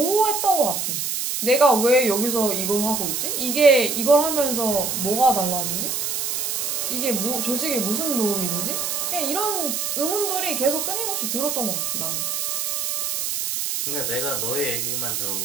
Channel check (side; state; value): right; noise; hiss, 1 dB below the sound